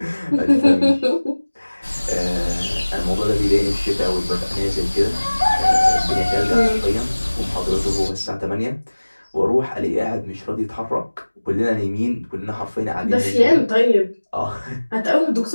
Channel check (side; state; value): both; inverted; correlation -1.00